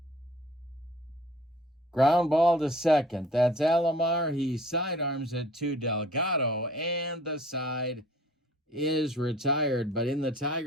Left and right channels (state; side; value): normal; both; correlation 0.51